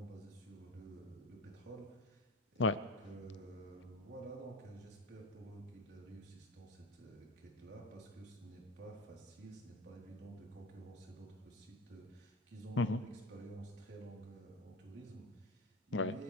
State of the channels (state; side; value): normal; both; correlation 0.26